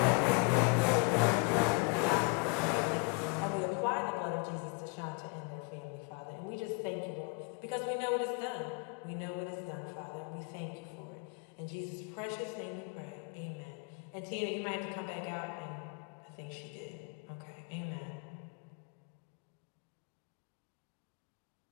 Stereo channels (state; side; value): quieter; right; 31.5 dB